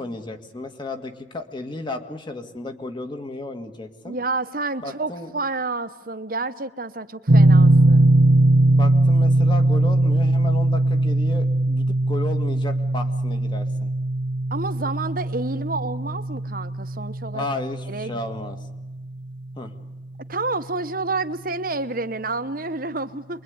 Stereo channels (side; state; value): both; normal; correlation 0.76